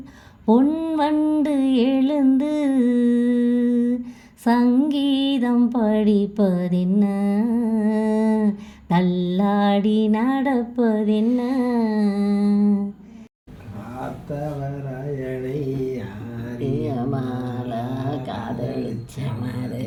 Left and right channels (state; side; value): identical; both; correlation 1.00